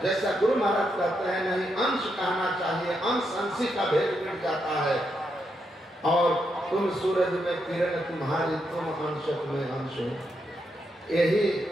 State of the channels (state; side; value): normal; both; correlation 0.81